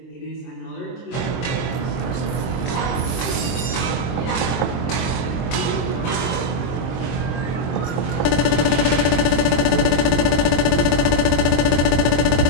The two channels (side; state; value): right; late; 23 ms